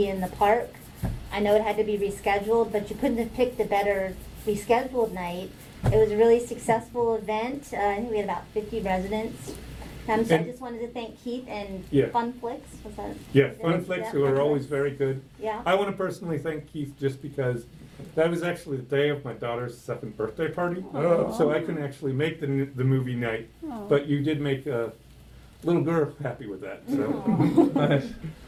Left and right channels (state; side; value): identical; both; correlation 1.00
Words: in the park. I know it had to be rescheduled, but you couldn't have picked a better rescheduled night. It was a really successful event. I think we had about 50 residents. So I And- just wanted to thank Keith and Yeah. Fun Flicks. Was that? Yeah, is it- Funflix, yeah, who are Fun always Flicks. very good. Yeah. I want to personally thank Keith just because that was actually the day of my daughter's 2nd birthday party. Aw. So I couldn't actually make the movie night, Aw. but you did make a little girl happy with that, so. Aw. Nice.